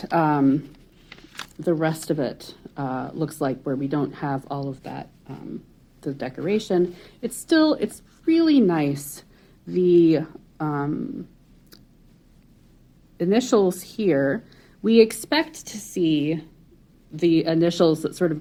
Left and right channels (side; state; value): both; identical; correlation 1.00